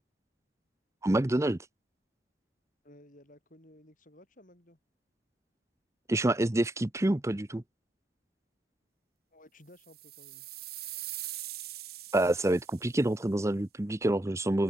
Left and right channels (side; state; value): both; normal; correlation 0.81